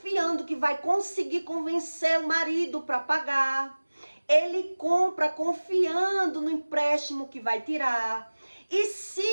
que vai conseguir convencer o marido para pagar. Ele compra confiando no empréstimo que vai tirar. E se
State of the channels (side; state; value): both; inverted; correlation -1.00